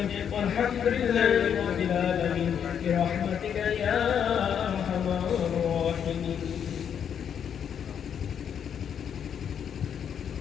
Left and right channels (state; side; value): quieter; right; 8.2 dB